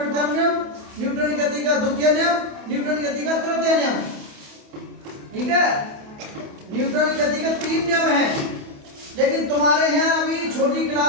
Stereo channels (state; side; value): late; left; 28 ms